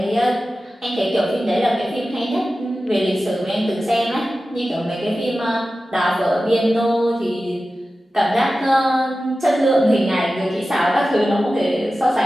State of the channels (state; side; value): normal; both; correlation 0.94